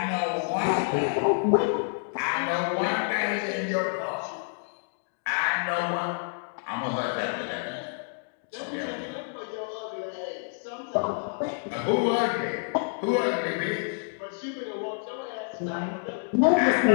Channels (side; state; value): right; silent; digital silence